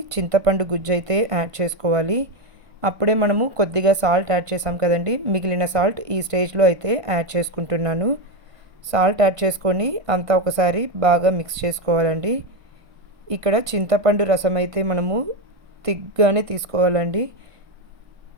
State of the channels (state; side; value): late; left; 1.5 ms